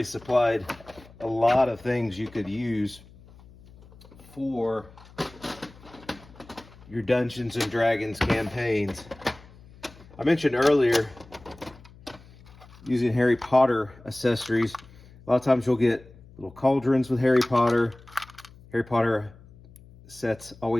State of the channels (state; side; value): noise; left; hum, 23 dB below the sound